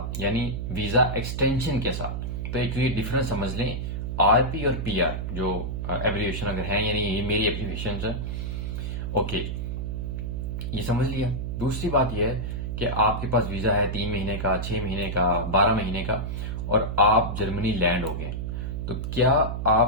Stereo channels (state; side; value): noise; right; hum, 3 dB below the sound